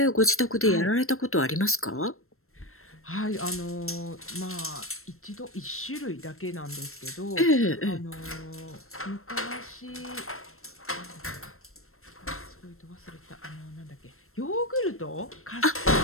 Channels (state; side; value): late; right; 0.62 ms